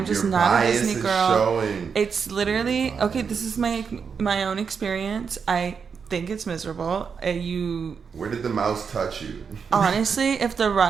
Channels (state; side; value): quieter; left; 6.1 dB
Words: just Your not a bias Disney is girl. showing. It's literally okay. This is my own experience. I think it's miserable. Where did the mouse touch you? Honestly, if the